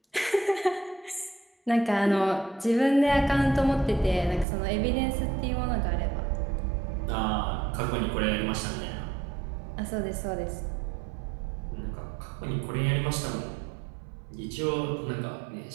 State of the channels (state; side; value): drops out; left; at 4.5 s